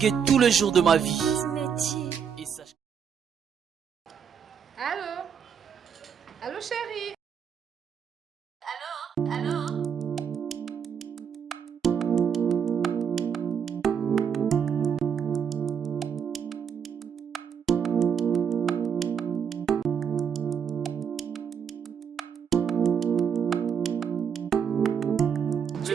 tous les jours de ma vie. Cosmétique. Et sache... Allô? Allô, chérie? Allô? S'il vous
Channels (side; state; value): left; quieter; 7.4 dB